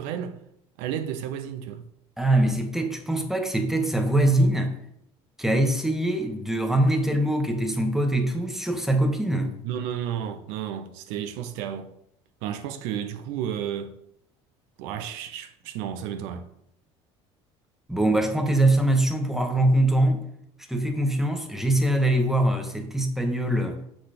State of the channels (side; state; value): both; normal; correlation 0.74